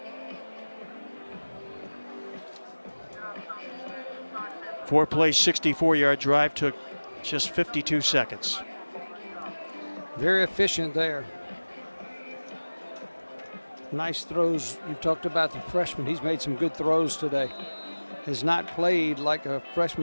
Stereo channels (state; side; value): inverted; both; correlation -1.00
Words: Four-play, 64-yard drive took just 52 seconds. Very efficient there. Nice throws. You've talked about the freshman. He's made some good throws today. Has not played like a